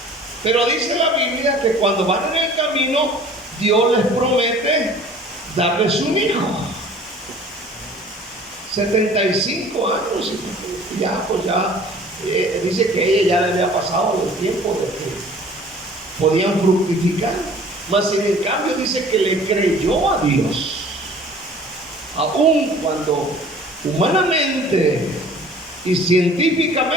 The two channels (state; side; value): normal; both; correlation 0.49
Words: Pero dice la Biblia que cuando van en el camino, Dios les promete darles un hijo. 75 años, ya pues ya, dice que ella ya le había pasado el tiempo de que podían fructificar. Mas en el cambio dice que le creyó a Dios, aun cuando humanamente y